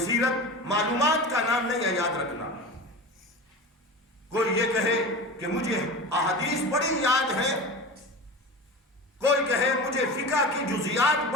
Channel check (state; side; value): normal; both; correlation 0.30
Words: معلومات کا نام نہیں ہے، یاد رکھنا۔ کوئی یہ کہے کہ مجھے احادیث بڑی یاد ہے، کوئی کہے مجھے فقہ کی جزیات